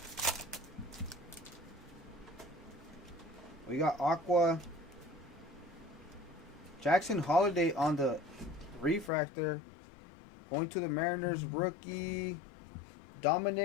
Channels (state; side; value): drops out; right; at 9.1 s